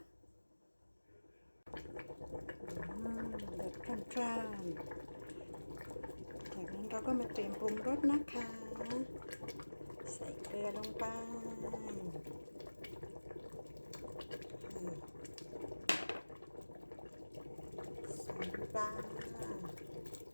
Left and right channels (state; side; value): inverted; both; correlation -1.00